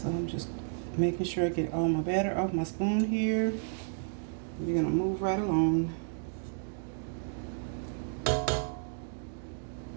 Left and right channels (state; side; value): silent; left; digital silence